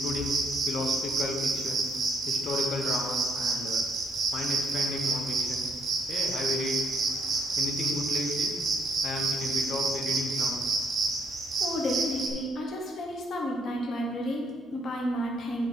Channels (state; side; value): normal; both; correlation 0.70